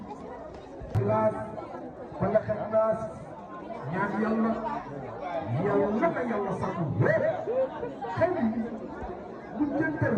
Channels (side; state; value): both; identical; correlation 1.00